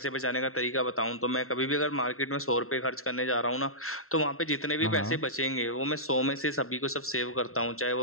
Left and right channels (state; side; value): late; right; 0.62 ms